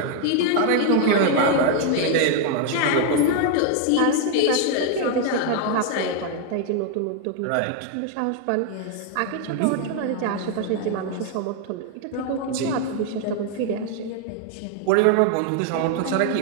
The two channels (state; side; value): different; both; correlation 0.00